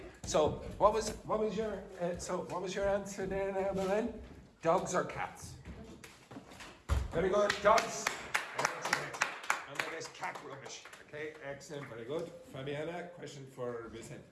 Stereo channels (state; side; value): identical; both; correlation 1.00